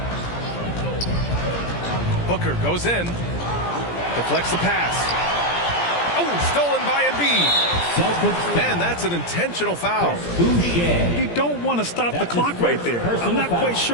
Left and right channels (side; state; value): right; late; 17 ms